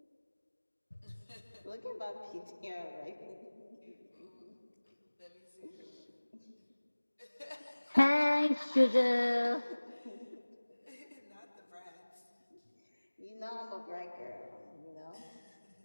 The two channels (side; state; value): both; inverted; correlation -1.00